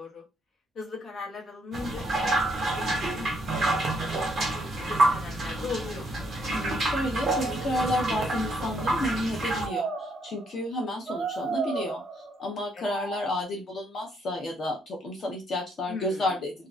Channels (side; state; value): both; normal; correlation 0.72